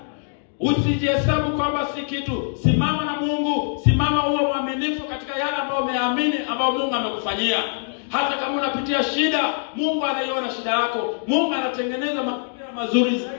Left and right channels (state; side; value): silent; right; digital silence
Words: Usijihesabu kwamba si kitu. Simama na Mungu, simama uwe mwaminifu katika yale ambayo umeamini, ambayo Mungu amekufanyia. Hata kama unapitia shida, Mungu anaiona shida yako. Mungu anatengeneza mazingira mazuri